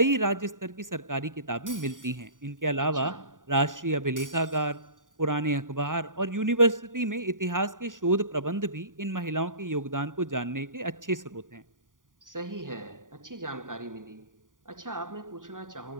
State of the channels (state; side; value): late; left; 0.89 ms